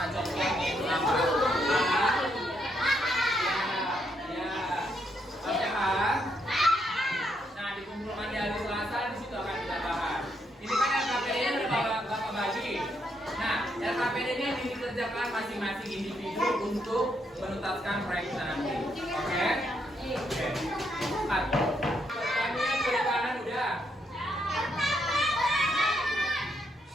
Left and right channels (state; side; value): normal; both; correlation 0.76